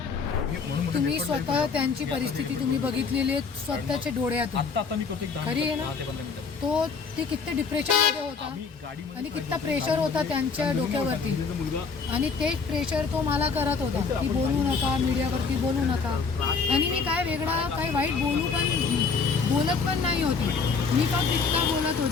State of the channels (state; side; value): quieter; right; 5.1 dB